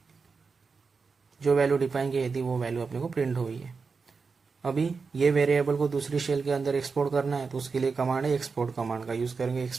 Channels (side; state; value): left; quieter; 4.9 dB